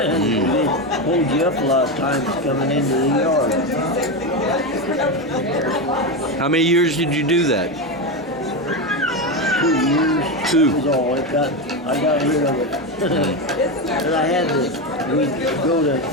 hold you up a lot of times coming into the yard. How many years did you do that? 2 years. 2. That was all. I got rid of it. But I had to,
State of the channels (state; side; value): normal; both; correlation 0.14